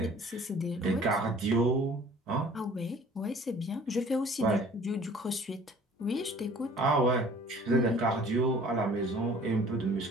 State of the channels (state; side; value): normal; both; correlation 0.51